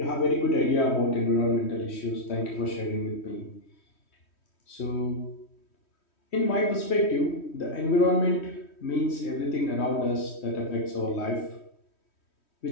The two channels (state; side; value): late; right; 3.1 ms